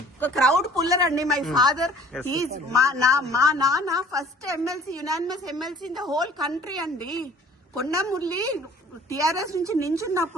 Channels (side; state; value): both; normal; correlation 0.51